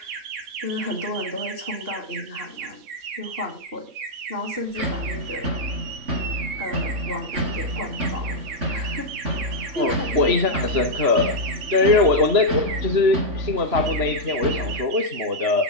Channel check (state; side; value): late; left; 3.0 ms